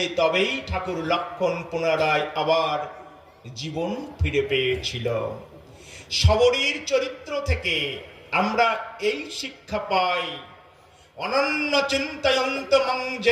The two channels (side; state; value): both; identical; correlation 1.00